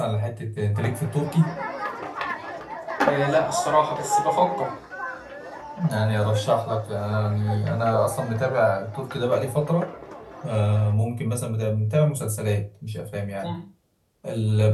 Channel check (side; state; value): both; identical; correlation 1.00